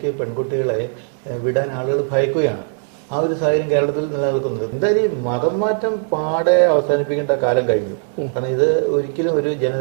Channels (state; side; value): silent; left; 66 dB below the other